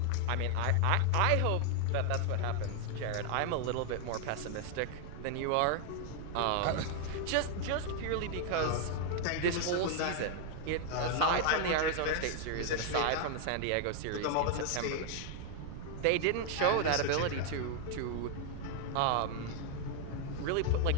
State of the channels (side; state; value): both; different; correlation 0.00